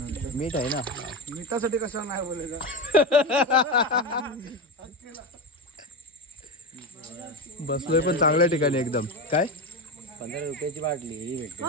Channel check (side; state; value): both; normal; correlation 0.17